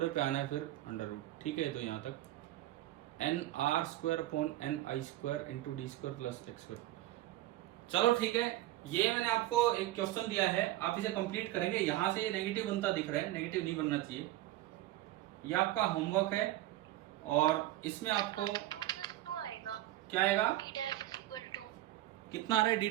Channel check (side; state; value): left; quieter; 15.4 dB